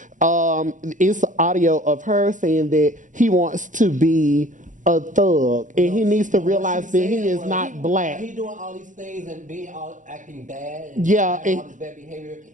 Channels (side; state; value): left; late; 0.37 ms